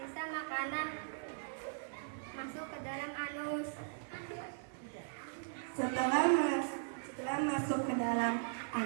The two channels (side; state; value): left; silent; 52 dB below the other